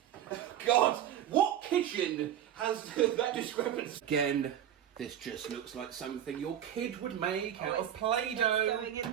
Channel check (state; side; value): quieter; left; 10.6 dB